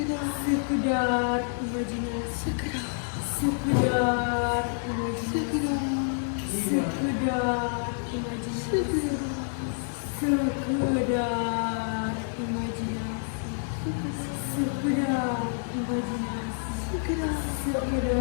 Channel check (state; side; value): silent; right; digital silence